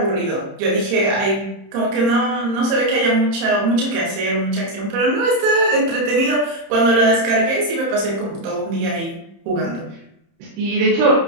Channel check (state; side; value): late; left; 30 ms